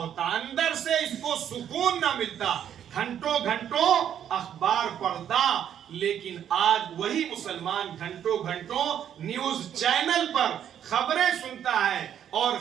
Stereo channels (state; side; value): quieter; left; 9.6 dB